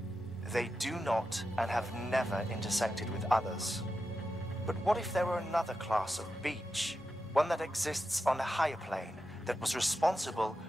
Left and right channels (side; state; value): both; normal; correlation 0.89